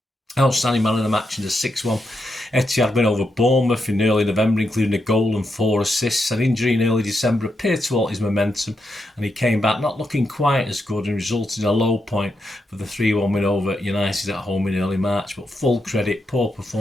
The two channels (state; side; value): normal; both; correlation 0.84